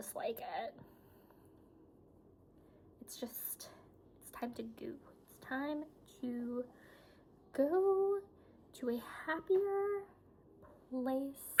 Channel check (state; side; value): identical; both; correlation 1.00